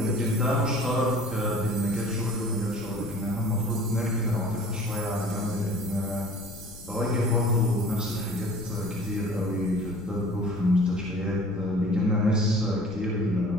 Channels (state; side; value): noise; left; rumble, 16 dB below the sound